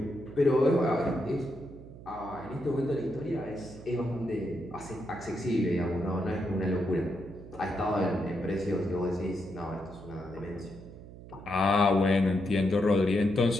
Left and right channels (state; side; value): noise; right; hum, 16 dB below the sound